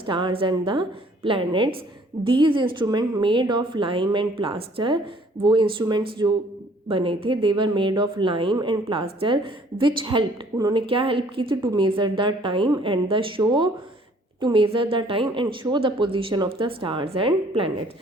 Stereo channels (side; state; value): both; normal; correlation 0.58